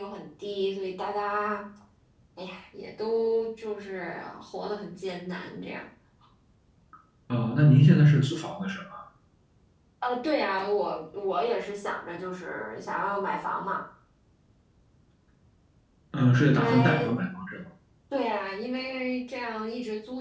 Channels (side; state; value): both; identical; correlation 1.00